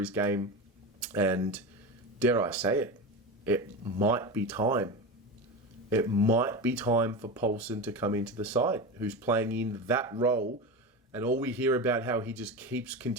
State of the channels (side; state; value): both; normal; correlation 0.23